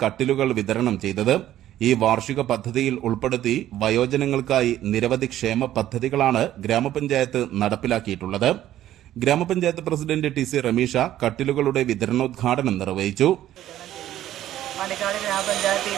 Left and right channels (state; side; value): quieter; left; 12.8 dB